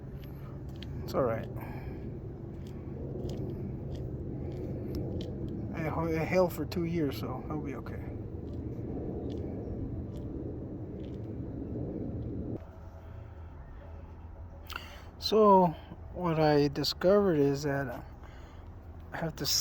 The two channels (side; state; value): both; identical; correlation 1.00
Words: It's alright. It held for 2 years, so it'll be okay. So what I discovered is that I have to